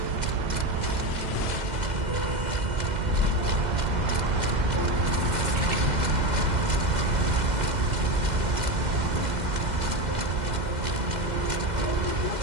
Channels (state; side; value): late; left; 2.0 ms